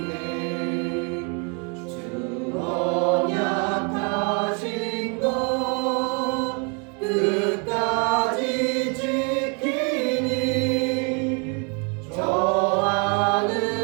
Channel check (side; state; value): left; quieter; 35.3 dB